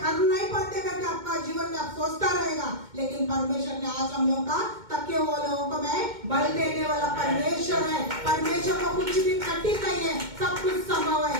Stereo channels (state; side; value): late; left; 2.2 ms